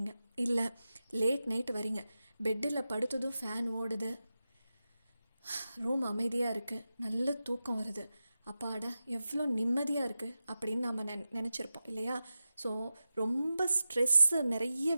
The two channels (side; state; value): both; inverted; correlation -0.93